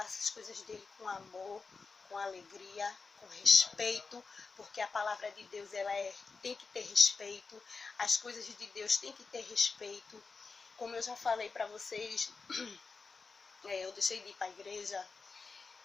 as coisas dele com amor, com alegria, com respeito, porque a palavra de Deus tem que ter respeito, as coisas de Deus têm que ter respeito. Como eu já falei para vocês, eu deixei de ir para a igreja,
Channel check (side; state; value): right; quieter; 4.5 dB